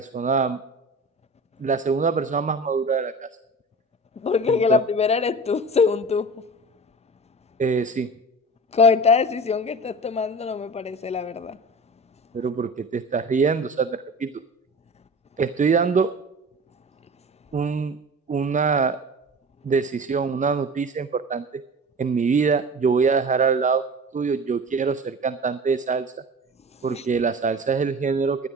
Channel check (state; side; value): normal; both; correlation 0.36